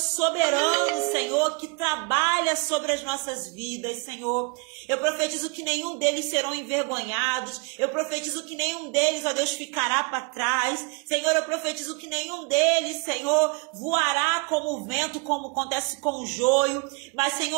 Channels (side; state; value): left; quieter; 31.7 dB